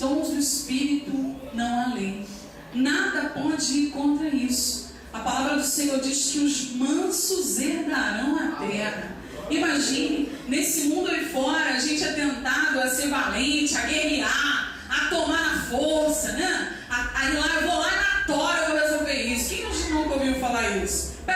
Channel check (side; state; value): both; identical; correlation 1.00